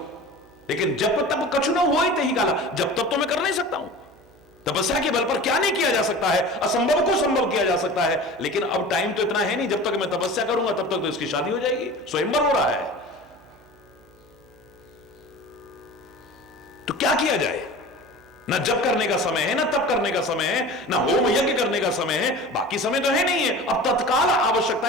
लेकिन जब तब कछु न हो ही काला, जब तब तो मैं कर नहीं सकता हूं। तपस्या के बल पर क्या नहीं किया जा सकता है, असंभव को संभव किया जा सकता है। लेकिन अब टाइम तो इतना है नहीं, जब तक मैं तपस्या करूंगा तब तक तो इसकी शादी हो जाएगी, स्वयंवर हो रहा है। तो क्या किया जाए? ना जप करने का समय है, ना तप करने का समय है, ना होम यज्ञ करने का समय है, बाकी समय तो है नहीं है। अब तत्काल आवश्यकता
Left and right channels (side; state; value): right; noise; hum, 29 dB below the sound